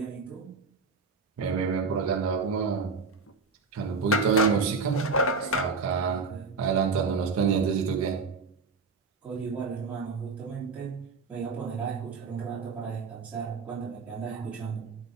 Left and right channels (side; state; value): left; quieter; 4.5 dB